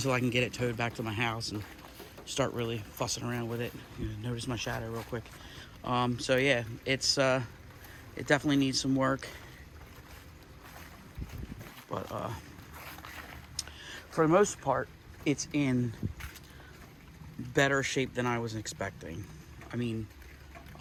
I can get it towed back to my house and start really fussing around with it. Notice my shadow real quick. So yeah, it definitely needs some work, but for the most part, it's in better shape than I was expecting. I mean,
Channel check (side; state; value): both; identical; correlation 1.00